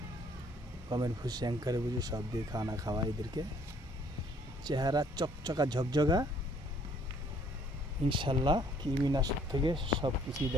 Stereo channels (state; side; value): normal; both; correlation 0.62